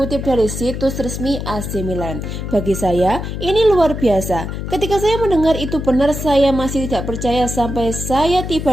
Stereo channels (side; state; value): left; noise; hum, 6 dB below the sound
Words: dari situs resmi AC Milan. Bagi saya, ini luar biasa. Ketika saya mendengar itu benar, saya masih tidak percaya sampai saya